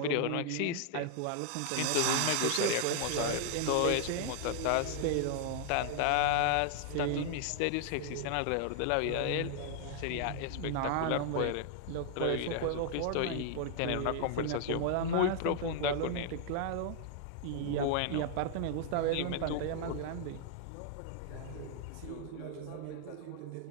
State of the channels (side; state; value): both; different; correlation 0.00